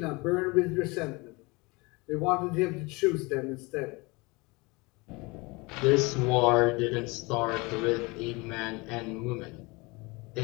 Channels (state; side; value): quieter; right; 25.8 dB